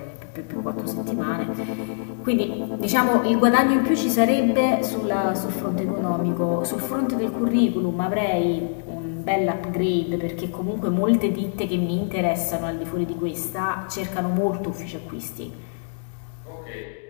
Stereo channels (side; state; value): right; silent; digital silence